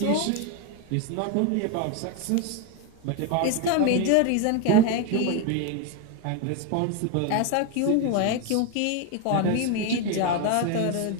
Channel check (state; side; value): different; both; correlation 0.01